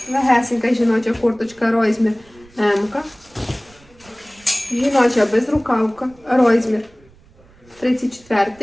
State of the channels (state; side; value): noise; right; rumble, 28 dB below the sound